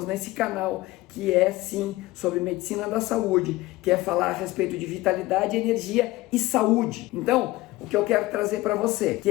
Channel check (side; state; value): right; quieter; 18.8 dB